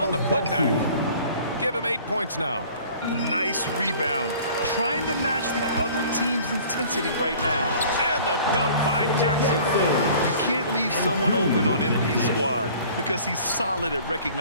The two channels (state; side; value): inverted; both; correlation -0.49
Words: the putback. Give him 8 points now. Nice rebound. Trying to match the other team's intensity right now. And the dunk by Jackson. You can't leave someone open on MP's squad because he's solid at